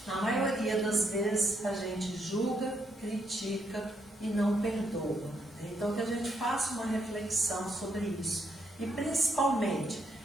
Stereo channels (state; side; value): normal; both; correlation 0.76